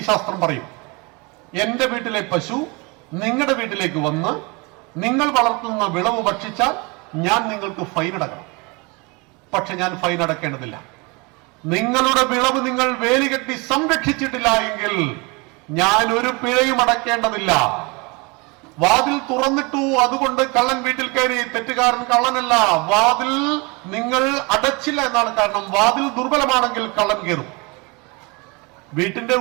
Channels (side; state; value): left; quieter; 28.2 dB